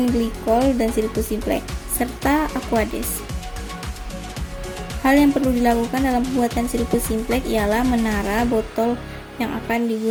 glikol, dan sirup simplex, serta aquades. Hal yang perlu dilakukan dalam pembuatan sirup simplex ialah menara botol yang akan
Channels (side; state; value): both; identical; correlation 1.00